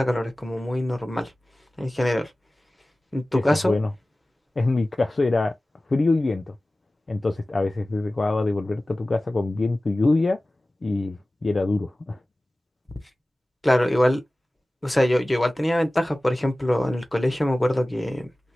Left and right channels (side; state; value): both; normal; correlation 0.97